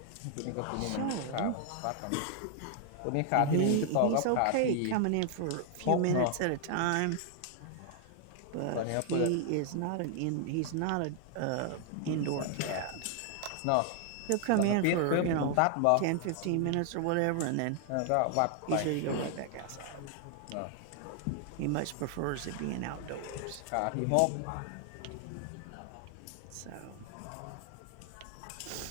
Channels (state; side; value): different; both; correlation 0.00